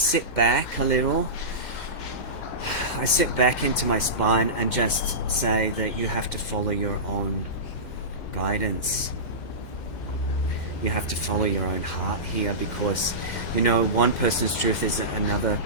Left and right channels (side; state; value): right; late; 2.1 ms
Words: back a little, I sit back into my spine and just say that you have to follow your own guidance. You have to follow your own heart here, because you know, one person's truth is another